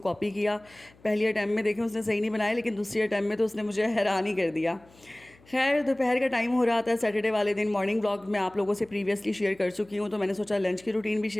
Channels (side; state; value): left; noise; hum, 28 dB below the sound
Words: किया। पहली अटैम्प्ट में देखें उसने सही नहीं बनाया, लेकिन दूसरी अटैम्प्ट में तो उसने मुझे हैरान ही कर दिया। खैर दोपहर का टाइम हो रहा था सैटरडे वाले दिन। मॉर्निंग व्लॉग मैं आप लोगों से प्रीवियसली शेयर कर चुकी हूँ, तो मैंने सोचा लंच की रूटीन भी